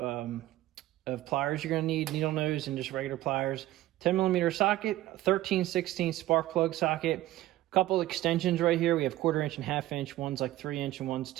pliers you're going to need, needle nose and just regular pliers. 10mm socket, 13/16 spark plug socket. A couple extensions right here. We have 1/4-inch and 1/2 inch. One's like 3-inch and one's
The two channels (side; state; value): left; quieter; 15.7 dB